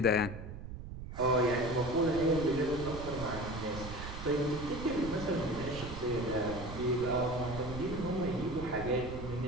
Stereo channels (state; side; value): noise; right; rumble, 9 dB below the sound